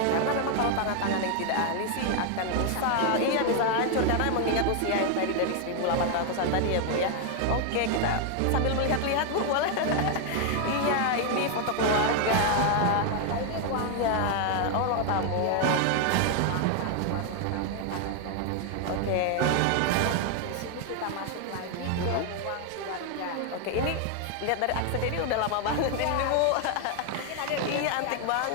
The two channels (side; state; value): both; different; correlation 0.00